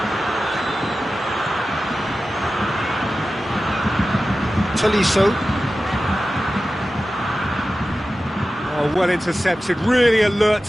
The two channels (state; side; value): normal; both; correlation 0.94